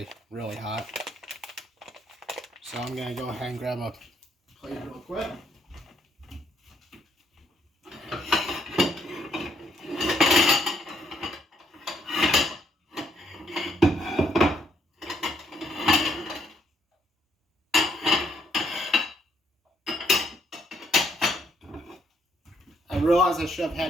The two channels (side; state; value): both; normal; correlation 0.71